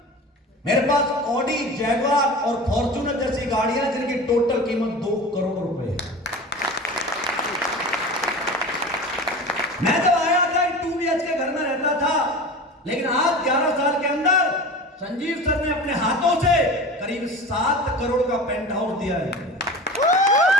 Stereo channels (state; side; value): normal; both; correlation 0.34